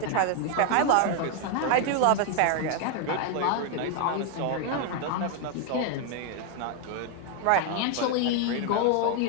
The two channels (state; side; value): different; both; correlation 0.00